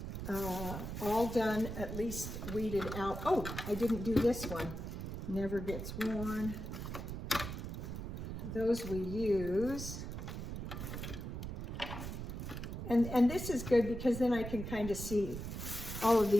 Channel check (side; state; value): right; noise; rumble, 6 dB below the sound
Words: all done, at least weeded out. Oh, I didn't do this one. Never gets worn. Those we use. And this is good because then I can kind of see all of